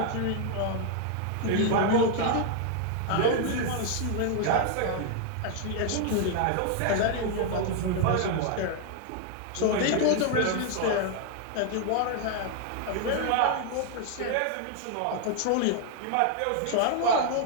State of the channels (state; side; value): different; both; correlation 0.00